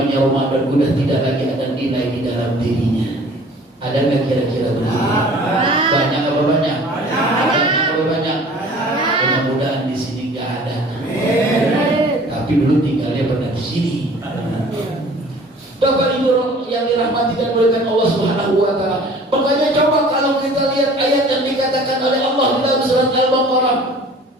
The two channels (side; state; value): both; normal; correlation 0.49